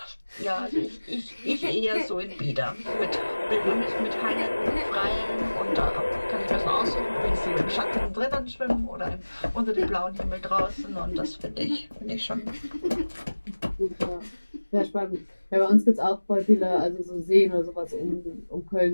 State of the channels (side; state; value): both; inverted; correlation -1.00